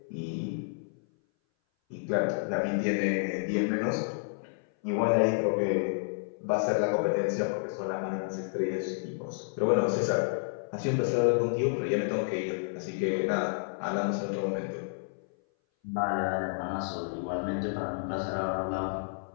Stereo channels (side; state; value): right; silent; 57 dB below the other